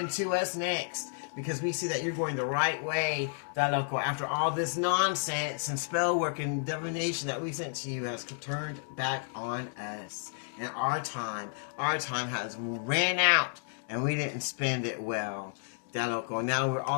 to us next. Because we see that you're going the right way, after all this nonsense and spell work and divination that we sent to you has turned back on us. And our time has ran out, and we didn't spend it well. Now we're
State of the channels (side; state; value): right; silent; digital silence